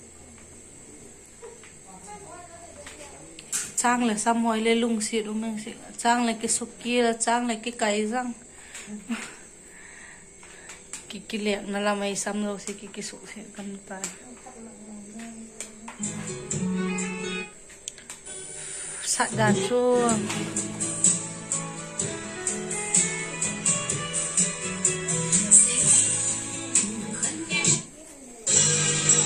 trang là xăm hồi lên lung xịt đúng không chị? Trang là cái súp kia là trang là cái cày răng cái lẹn nó làm mày xăm đâu thì cái súp sẽ cầm tay sạch đàn chua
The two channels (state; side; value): identical; both; correlation 1.00